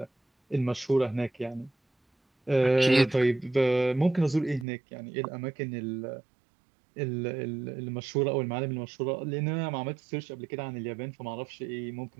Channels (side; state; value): left; drops out; at 4.7 s